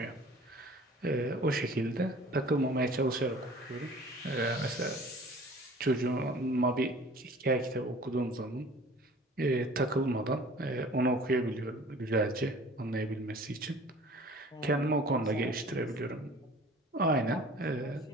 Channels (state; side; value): normal; both; correlation 0.47